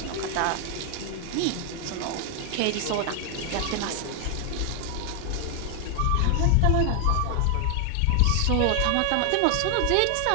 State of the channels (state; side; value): different; both; correlation 0.00